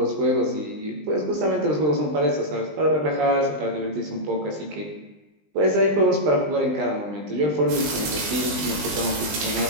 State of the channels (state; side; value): late; left; 20 ms